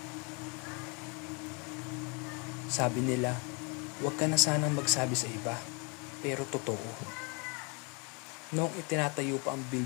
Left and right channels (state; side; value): quieter; right; 32.9 dB